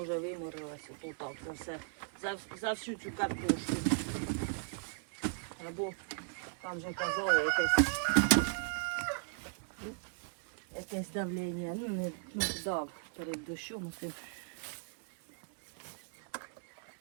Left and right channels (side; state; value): left; silent; 53 dB below the other